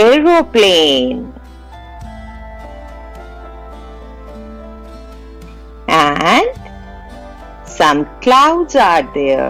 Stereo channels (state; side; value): identical; both; correlation 1.00